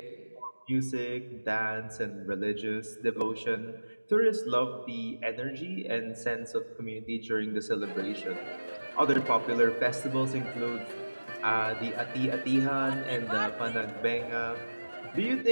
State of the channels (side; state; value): both; inverted; correlation -1.00